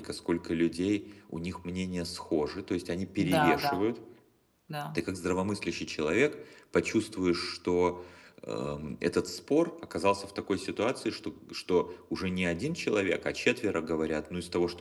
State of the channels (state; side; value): identical; both; correlation 1.00